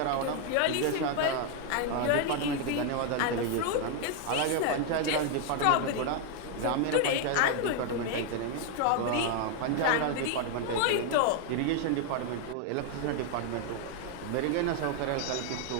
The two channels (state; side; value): different; both; correlation 0.01